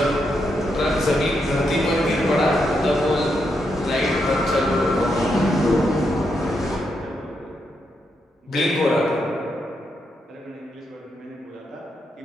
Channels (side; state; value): both; normal; correlation 0.81